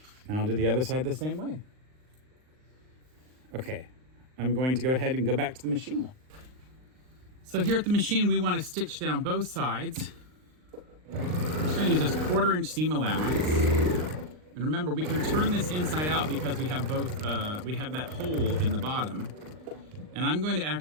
And I'll do the other side the same way. Okay, I'm going to go ahead and go back to the machine. So here at the machine, we want to stitch down both sides. I'm just going to use this 1/4 inch seam allowance. And remember, we can turn this inside out because we have both, we have that hole in the bottom. And I'm going to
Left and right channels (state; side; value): late; left; 39 ms